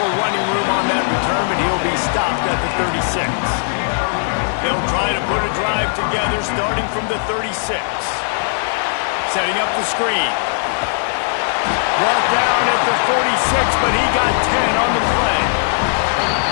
running room on that return, but he'll be stopped at the 36. They'll try to put a drive together starting from the 36. Setting up the screen. Brought down at the 46, but he got 10 on the play.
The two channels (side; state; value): right; silent; digital silence